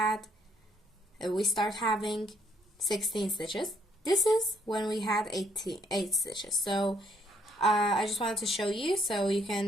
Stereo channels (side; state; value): both; normal; correlation 0.69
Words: We start having 16 stitches. This is when we had 8 stitches. So I just wanted to show you so you